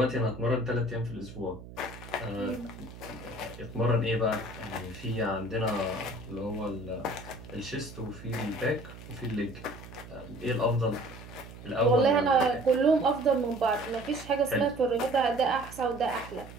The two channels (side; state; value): right; noise; hum, 15 dB below the sound